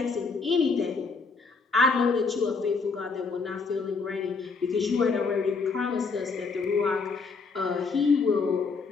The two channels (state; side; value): quieter; right; 4.6 dB